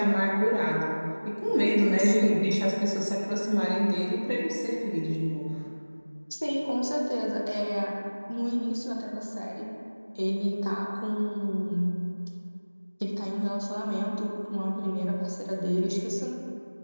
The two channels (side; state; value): both; inverted; correlation -1.00